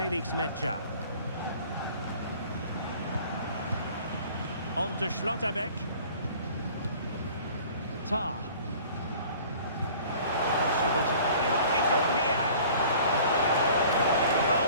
Mecha. On to Schlotterbeck. Tar. He might be through here. Oh,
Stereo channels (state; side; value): inverted; both; correlation -0.49